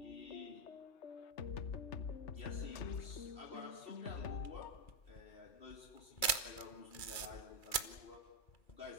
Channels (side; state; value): right; late; 2.4 ms